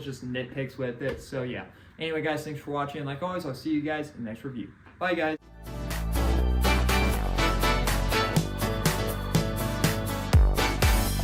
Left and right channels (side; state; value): both; identical; correlation 1.00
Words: just nitpicks with it. So yeah. Anyway, guys, thanks for watching. Like always, I'll see you guys in the next review. Bye, guys.